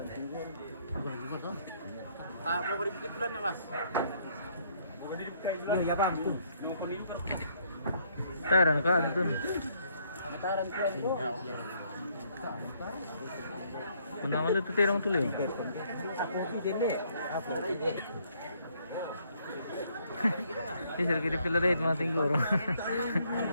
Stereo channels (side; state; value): both; inverted; correlation -0.68